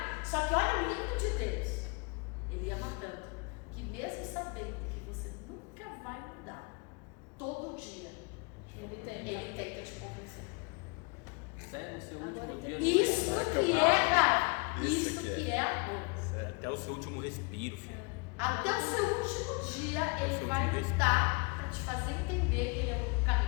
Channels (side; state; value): right; quieter; 31.1 dB